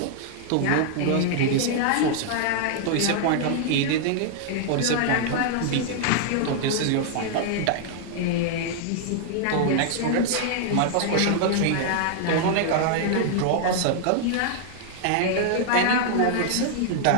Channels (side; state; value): both; different; correlation -0.01